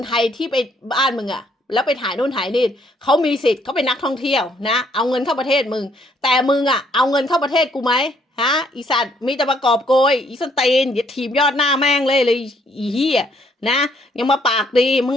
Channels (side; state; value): both; normal; correlation 0.67